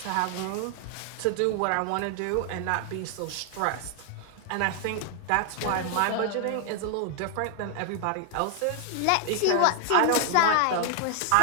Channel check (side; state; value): both; different; correlation 0.00